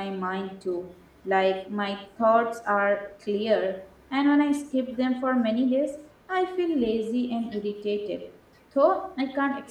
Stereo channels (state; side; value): identical; both; correlation 1.00